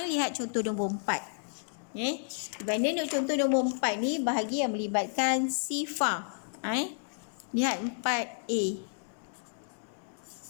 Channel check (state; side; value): silent; right; digital silence